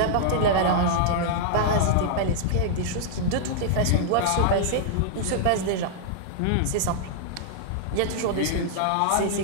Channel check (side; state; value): both; different; correlation -0.01